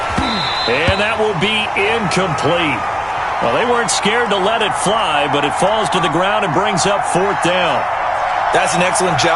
And that will be incomplete. Well, they weren't scared to let it fly, but it falls to the ground and brings up 4th down. That's an excellent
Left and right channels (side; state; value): both; identical; correlation 1.00